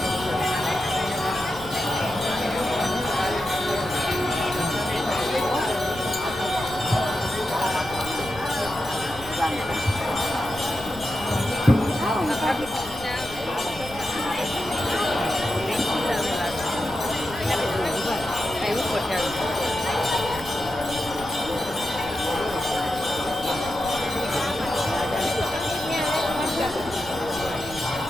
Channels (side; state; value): left; noise; rumble, 16 dB below the sound